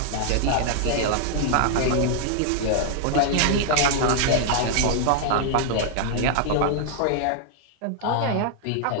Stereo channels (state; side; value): different; both; correlation -0.01